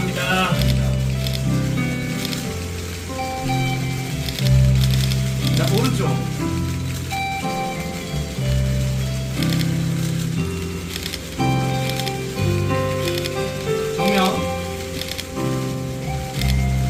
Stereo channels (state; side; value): identical; both; correlation 1.00